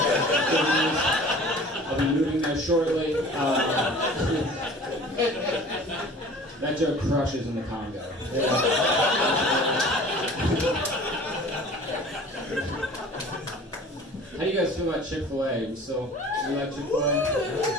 I'll be moving there shortly. That joke crushes in the Congo. How do you guys feel about Chick-fil-A? You like Chick-fil-A?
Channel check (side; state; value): both; normal; correlation 0.45